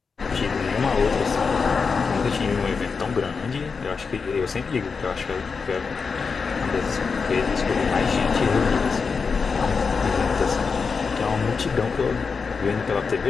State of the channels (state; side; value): quieter; right; 5.1 dB